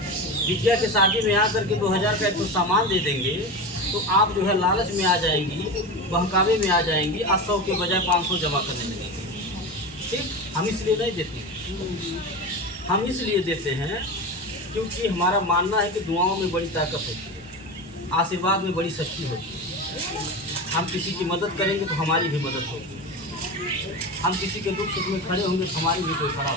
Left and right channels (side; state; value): both; normal; correlation 0.24